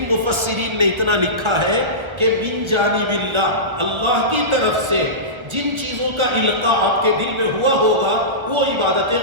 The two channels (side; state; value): left; late; 1.3 ms